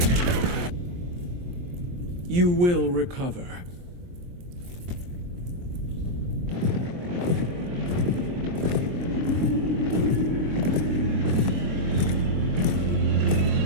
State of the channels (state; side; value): late; left; 23 ms